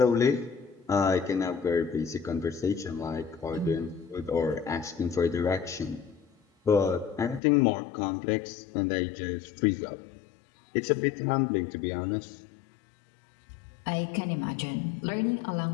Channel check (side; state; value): right; drops out; at 7.4 s